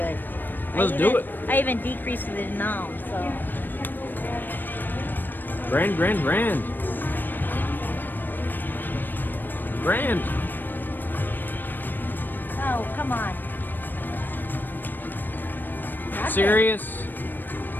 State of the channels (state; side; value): late; right; 0.092 ms